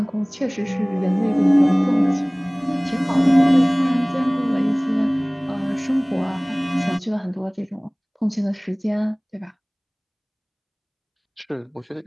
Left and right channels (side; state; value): both; identical; correlation 1.00